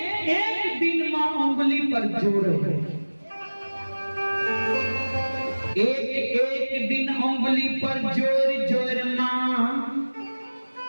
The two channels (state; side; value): inverted; both; correlation -1.00